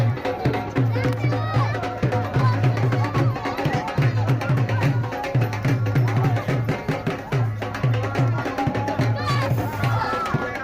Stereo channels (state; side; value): identical; both; correlation 1.00